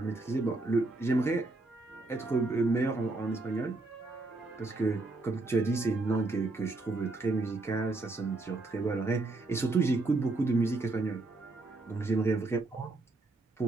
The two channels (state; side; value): quieter; left; 3.2 dB